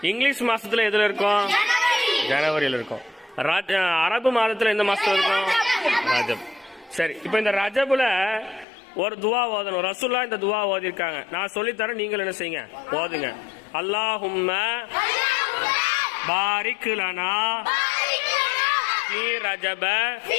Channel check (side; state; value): right; drops out; at 8.7 s